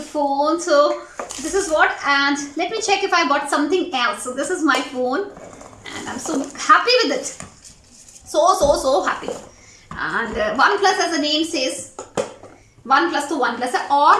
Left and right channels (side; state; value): both; identical; correlation 1.00